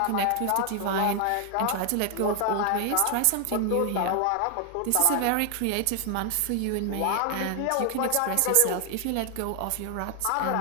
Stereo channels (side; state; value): both; different; correlation 0.00